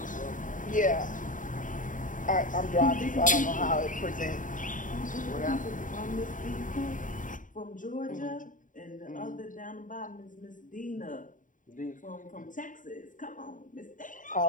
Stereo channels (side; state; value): right; late; 0.38 ms